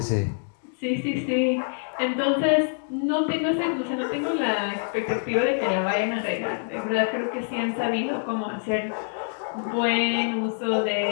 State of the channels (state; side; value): silent; right; digital silence